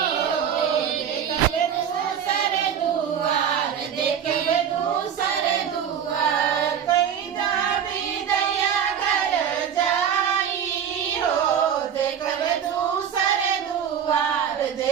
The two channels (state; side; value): quieter; left; 8.4 dB